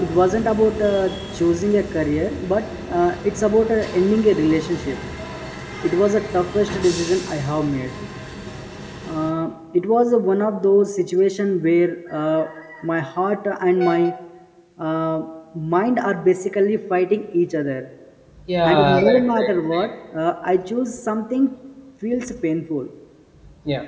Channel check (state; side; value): identical; both; correlation 1.00